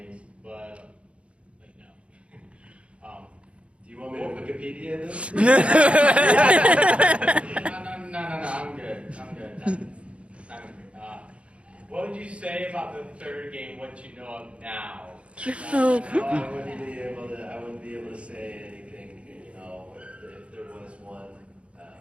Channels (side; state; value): left; late; 0.060 ms